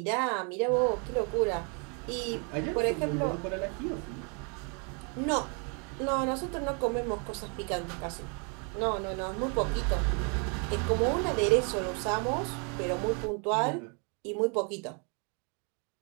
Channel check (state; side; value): quieter; left; 36.5 dB